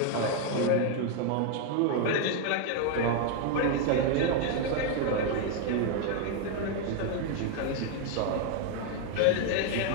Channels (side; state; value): both; different; correlation 0.01